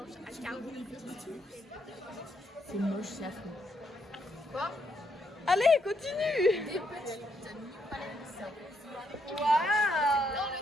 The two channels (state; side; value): normal; both; correlation 0.75